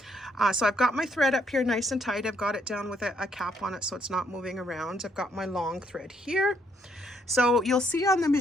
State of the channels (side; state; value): both; normal; correlation 0.71